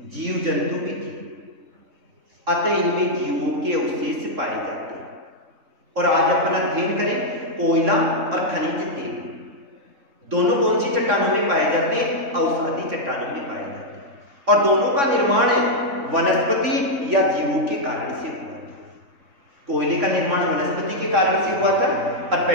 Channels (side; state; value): left; late; 3.6 ms